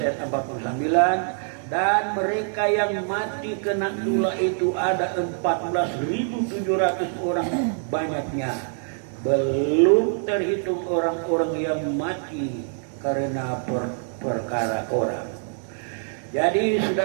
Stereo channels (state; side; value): silent; left; 62 dB below the other